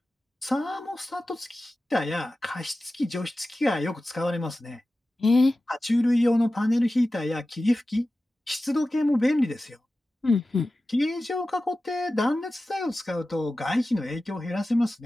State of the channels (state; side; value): normal; both; correlation 0.95